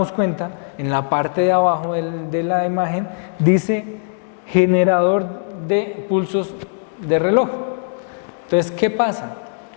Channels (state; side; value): silent; right; digital silence